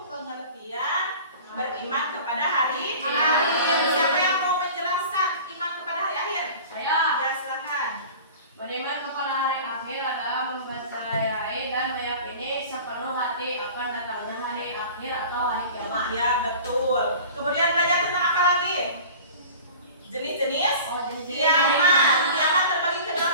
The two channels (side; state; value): both; inverted; correlation -0.41